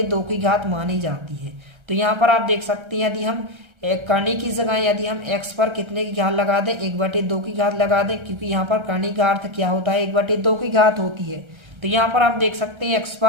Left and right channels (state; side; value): late; left; 1.3 ms